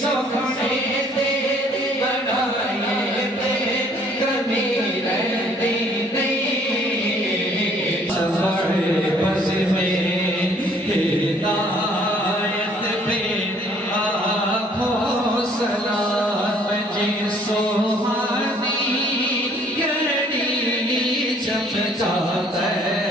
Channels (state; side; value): normal; both; correlation 0.60